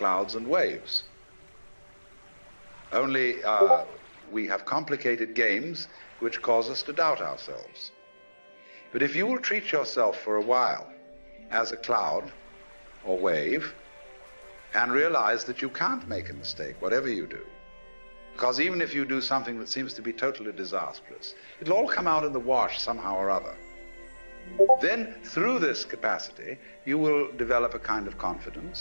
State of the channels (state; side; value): inverted; both; correlation -1.00